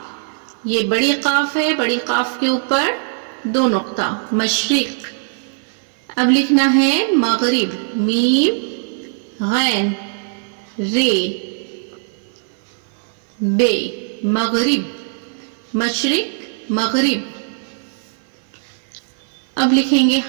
یہ بڑی قاف ہے, بڑی قاف کے اوپر 2 نقطہ, مشرق. اب لکھنا ہے مغرب. میم غین رے بے, مغرب, مشرق مغرب. اب لکھیں گے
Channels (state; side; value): silent; left; 56 dB below the other